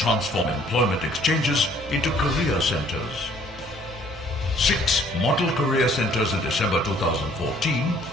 employment exchanges into career centers. 6 model career centers in December 2014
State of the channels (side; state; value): both; normal; correlation 0.59